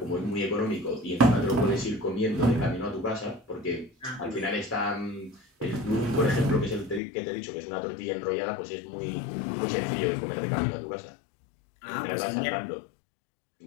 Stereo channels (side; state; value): right; drops out; at 7.0 s